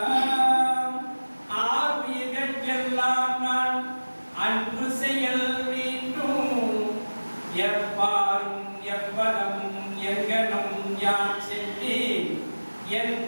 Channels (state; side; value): inverted; both; correlation -1.00